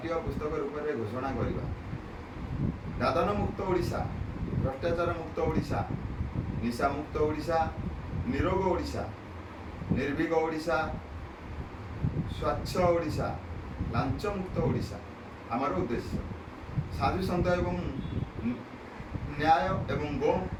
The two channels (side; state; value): both; identical; correlation 1.00